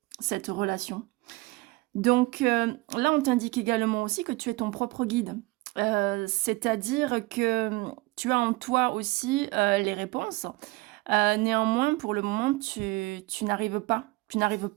cette relation. Donc là, on t'indique également aussi que tu es ton propre guide. C'est-à-dire que tu as en toi aussi les réponses. Néanmoins, pour le moment, tu n'arrives pas. Tu n'arrives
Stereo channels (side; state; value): left; quieter; 22.9 dB